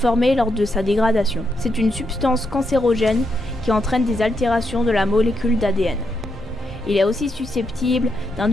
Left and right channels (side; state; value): both; normal; correlation 0.81